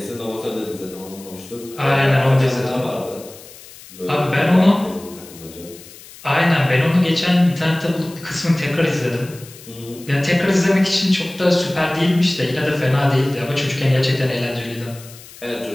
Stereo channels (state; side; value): noise; left; hiss, 19 dB below the sound